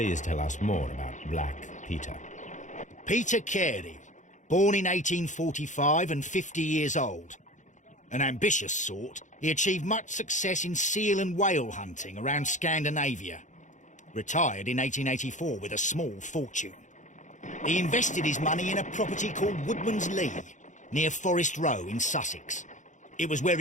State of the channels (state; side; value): late; right; 0.36 ms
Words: tell us more about Black Peter. Peter Carey, born in 1845 and 50 years old. An ambitious sort, he achieved much success in seal and whale hunting around Scandinavia. Retired in 1884 with a small fortune. He invested his money in a property called Woodman's Lee, near Forest Row in Sussex. It was where